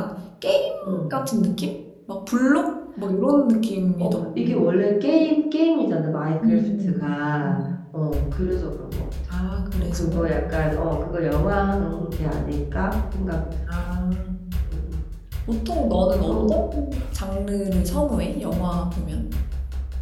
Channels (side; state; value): both; identical; correlation 1.00